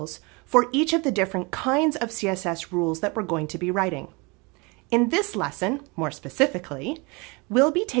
for each of the different kinds of CSS rules that we're going to be writing. In this lesson, more specifically, we'll be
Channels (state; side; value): quieter; left; 28.4 dB